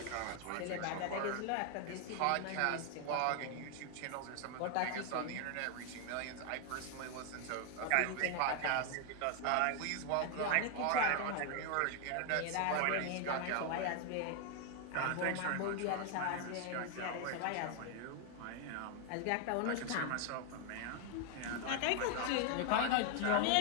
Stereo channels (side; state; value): both; different; correlation 0.00